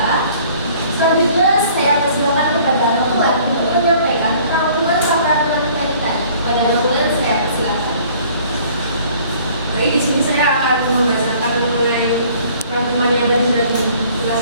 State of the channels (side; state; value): both; inverted; correlation -0.55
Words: selanjutnya saya persilakan kepada Notuan untuk menyampaikan rangkuman paparan materi tadi. Pada Notuan saya persilakan. Baik, di sini saya akan membacakan mengenai rangkuman yang tadi sudah